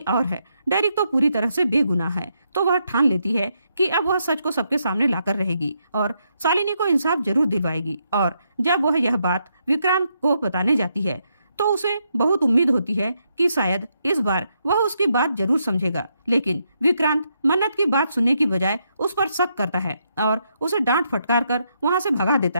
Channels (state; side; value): inverted; both; correlation -0.79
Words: और है, डेरिक तो पूरी तरह से बेगुनाह है, तो वह ठान लेती है कि अब वह सच को सबके सामने लाकर रहेगी और शालिनी को इंसाफ जरूर दिलवाएगी। और जब वह यह बात विक्रांत को बताने जाती है तो उसे बहुत उम्मीद होती है कि शायद इस बार वह उसकी बात जरूर समझेगा, लेकिन विक्रांत मन्नत की बात सुनने की बजाय उस पर शक करता है और उसे डांट फटकार कर वहां से भगा